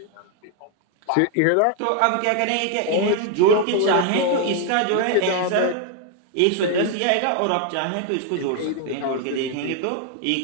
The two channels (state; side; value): different; both; correlation 0.01